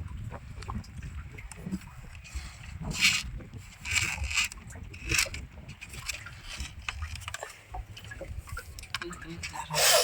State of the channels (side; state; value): both; identical; correlation 1.00